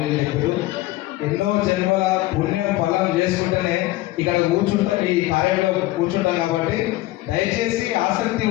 చెప్పారు. ఎన్నో జన్మల పుణ్యం ఫలం చేసుకుంటేనే ఇక్కడ కూర్చుంటాం, ఈ కార్యంలో కూర్చుంటాం. కాబట్టి దయచేసి ఆసక్తి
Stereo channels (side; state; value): right; quieter; 17.8 dB